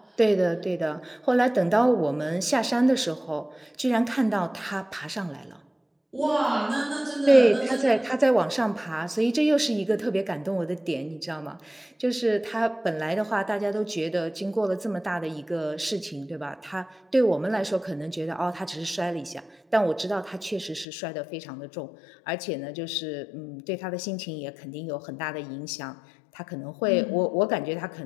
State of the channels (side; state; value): right; drops out; at 20.9 s